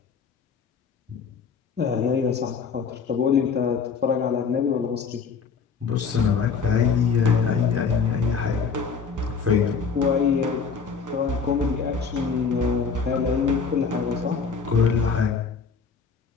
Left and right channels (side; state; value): right; quieter; 5.6 dB